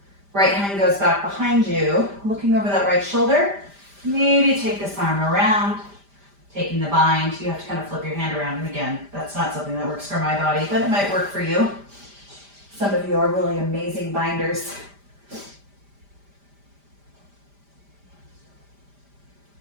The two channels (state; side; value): late; left; 5.0 ms